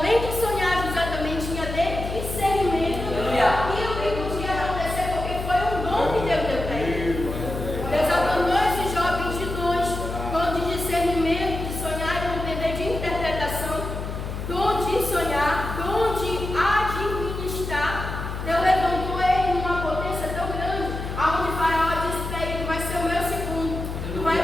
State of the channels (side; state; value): left; noise; hum, 6 dB below the sound